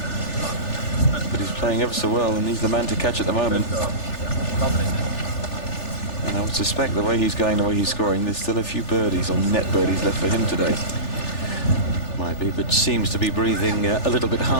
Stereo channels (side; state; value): right; late; 3.4 ms